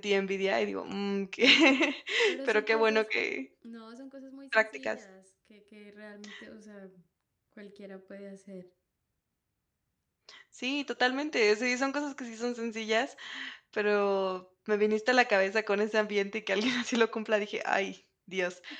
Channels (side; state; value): both; identical; correlation 1.00